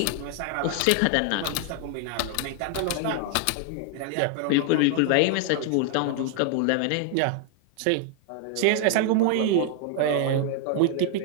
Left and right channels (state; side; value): different; both; correlation 0.00